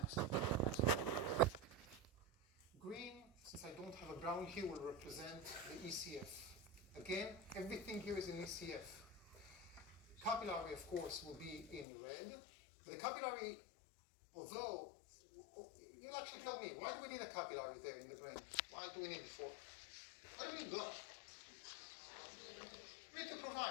Green, since I don't have a brown here, will represent the ECF. Again, everything here is in ECF. Capillary, of course, will be in red. But the capillary, although, you'll actually tell me, why do we need a capillary there in the brain? Why do we need it for? Why do we need blood? We need to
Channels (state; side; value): drops out; right; at 11.9 s